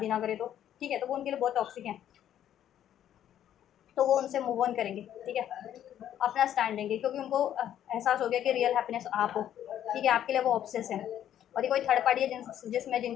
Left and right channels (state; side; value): quieter; right; 10.8 dB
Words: ना करे तो, ठीक है, तो वो उनके लिए बहुत टॉक्सिक हैं, तो वो उनसे मूव ऑन करेंगे, ठीक है, अपना स्टैंड लेंगे, क्योंकि उनको एहसास हो गया कि रियल हैप्पीनेस आप हो, ठीक है, आपके लिए वो ऑब्सेस है। और ये कोई थर्ड पार्टी है जिसमें